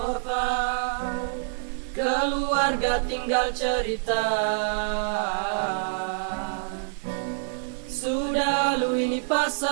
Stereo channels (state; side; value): silent; left; digital silence